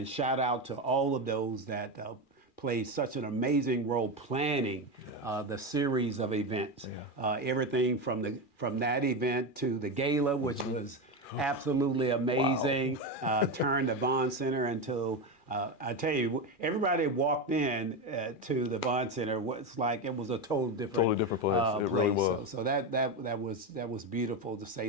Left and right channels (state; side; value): late; right; 2.4 ms